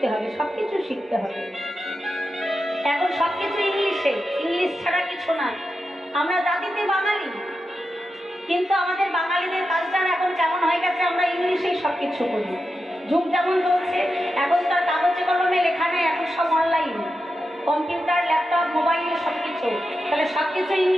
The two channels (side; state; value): both; normal; correlation 0.89